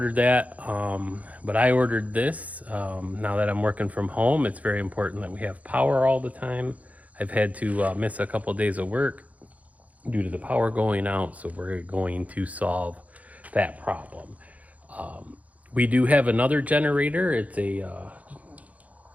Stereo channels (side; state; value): left; late; 0.070 ms